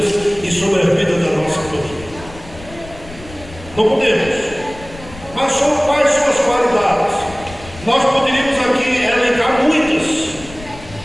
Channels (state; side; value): noise; left; rumble, 17 dB below the sound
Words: e sobre a vida da nossa família. Não podemos. Mas quais são as qualidades? Nós poderíamos aqui elencar muitas.